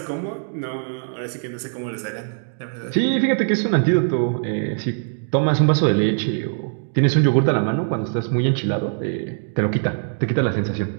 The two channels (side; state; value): left; silent; 64 dB below the other